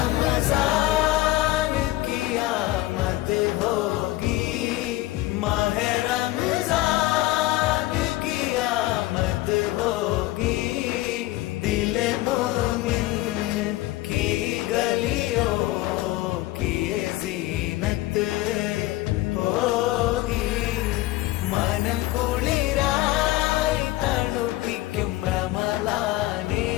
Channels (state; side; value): quieter; right; 17.4 dB